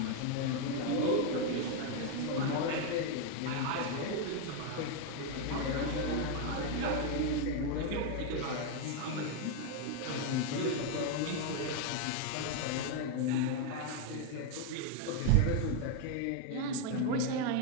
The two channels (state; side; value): different; both; correlation 0.01